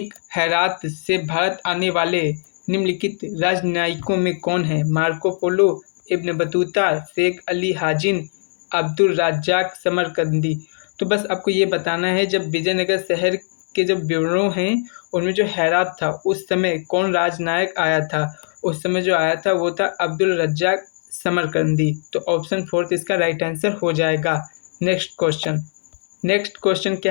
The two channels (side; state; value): right; silent; 65 dB below the other